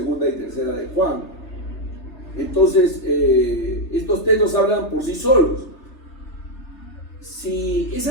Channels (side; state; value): right; late; 3.7 ms